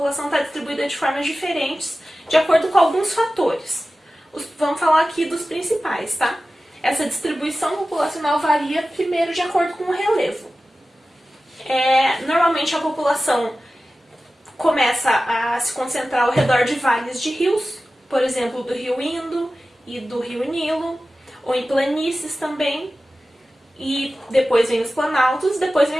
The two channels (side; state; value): both; normal; correlation 0.95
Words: está distribuída de formas diferentes, de acordo com alguns fatores. Vamos falar aqui dos principais, tá? Essa distribuição populacional varia primeiro de acordo com o relevo. Normalmente a população começa a se concentrar ao redor de vales de rios, por exemplo, do rio Indo e do rio Nilo, ou em planícies também, e depois vem os planaltos, depois